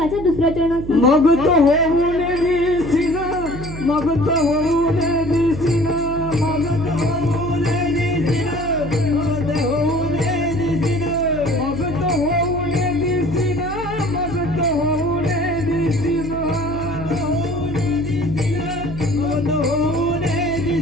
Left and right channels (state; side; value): noise; right; hum, 10 dB below the sound